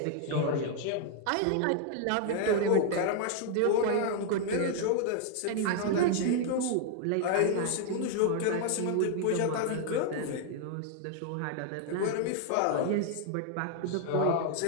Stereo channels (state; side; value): different; both; correlation 0.00